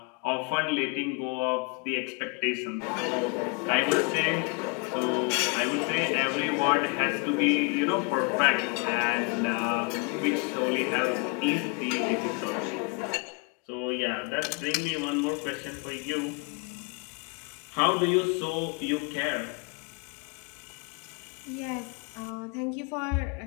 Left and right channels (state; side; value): quieter; right; 32.2 dB